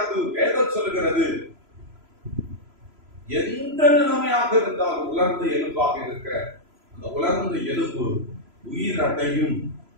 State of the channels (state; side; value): late; left; 3.0 ms